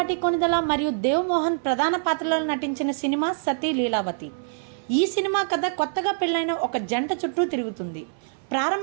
కొనిదల మరియు దేవ్ మోహన్ ప్రధాన పాత్రలో నటించిన సినిమా సతీ లీలావతి. ఈ సినిమా కథ కొత్తగా పెళ్ళైన ఒక జంట చుట్టూ తిరుగుతుంది.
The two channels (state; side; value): silent; left; 56 dB below the other